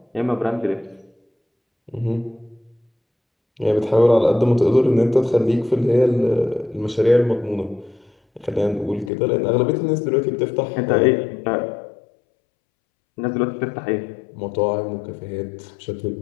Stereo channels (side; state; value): right; drops out; at 9.1 s